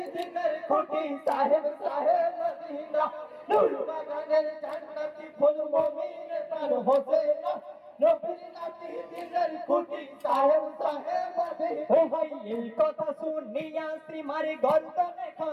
দিনের কুটি সাহেব সাহেব মদিনা। নূর বাগানের জান্নাতি ফুল মমিনের প্রাণ হোসেনা, নবীর নাতি দিনের কুটি সাহেব সাহেব মদিনা। ও ভাই এই কথা শুনিয়া সীমার গর্দনে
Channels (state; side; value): identical; both; correlation 1.00